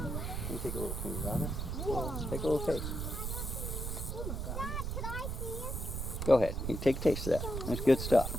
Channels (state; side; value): noise; right; rumble, 3 dB below the sound